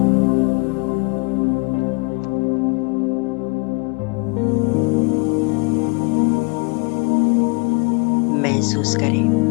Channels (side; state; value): right; quieter; 31.4 dB